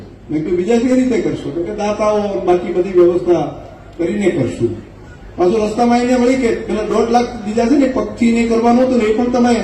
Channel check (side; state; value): both; identical; correlation 1.00